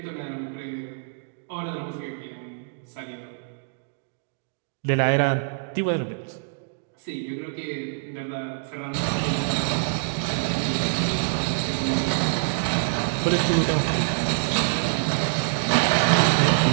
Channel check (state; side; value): silent; left; digital silence